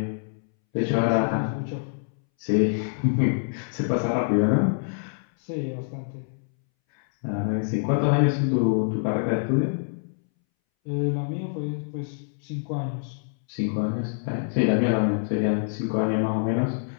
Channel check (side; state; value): right; silent; 61 dB below the other